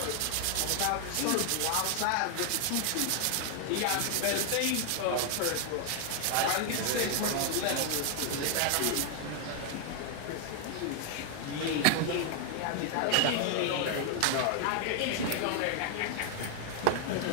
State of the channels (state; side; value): different; both; correlation 0.00